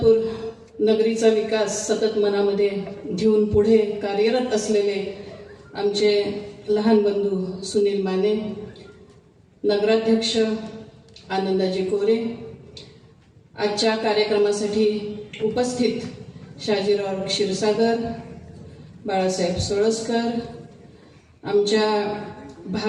नगरीचा विकास सतत मनामध्ये घेऊन पुढे कार्यरत असलेले आमचे लहान बंधू सुनील माने, नगराध्यक्ष आनंदाजी कोरे, आजच्या कार्यक्रमासाठी उपस्थित शाजीराव क्षीरसागर, बाळासाहेब सोळसकर, आमच्या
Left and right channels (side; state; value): both; identical; correlation 1.00